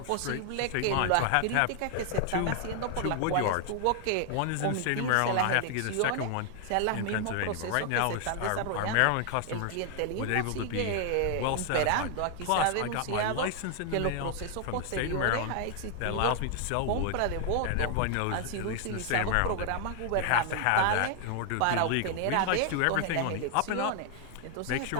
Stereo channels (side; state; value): both; different; correlation 0.00